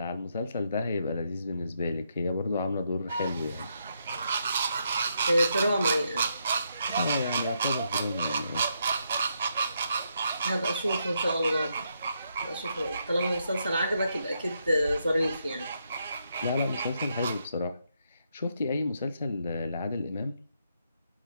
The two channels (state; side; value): inverted; both; correlation -0.79